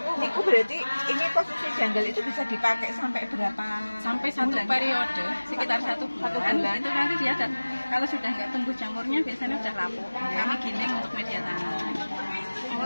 Niku berarti ini posisi janggal itu bisa dipakai sampai berapa? Sampai 1 periode, sekitar 1 bulan. Itu nanti dia kalau sudah nggak tumbuh jamurnya biasanya sudah lapuk. Kami giling untuk media tanam.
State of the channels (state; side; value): inverted; both; correlation -1.00